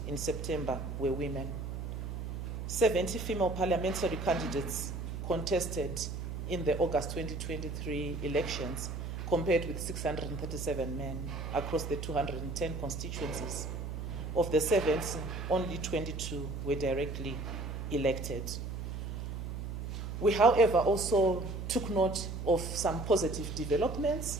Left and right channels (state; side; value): noise; right; hum, 5 dB below the sound